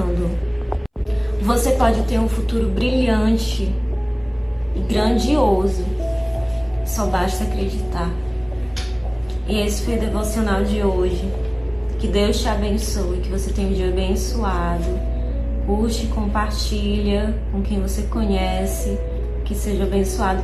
Você pode ter um futuro brilhante e grandioso, só basta acreditar. E esse foi o devocional de hoje. Que Deus te abençoe, que você tenha um dia abençoado. Curte, compartilha com quem você conhece, que seja abençoado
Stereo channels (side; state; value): both; identical; correlation 1.00